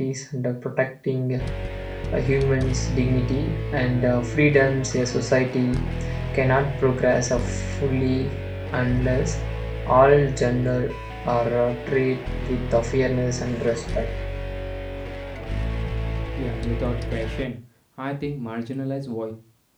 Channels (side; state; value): both; identical; correlation 1.00